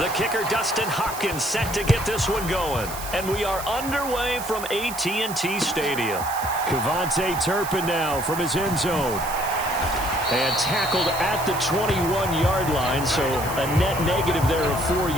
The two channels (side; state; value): right; noise; hiss, 11 dB below the sound